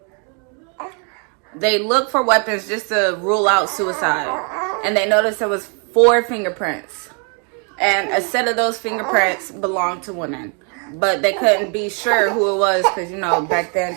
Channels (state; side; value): quieter; left; 38.6 dB